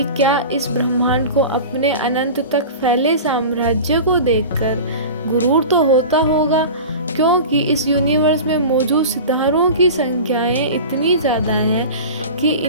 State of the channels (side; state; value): both; inverted; correlation -0.33